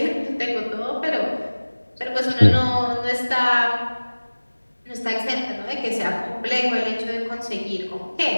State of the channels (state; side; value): inverted; both; correlation -1.00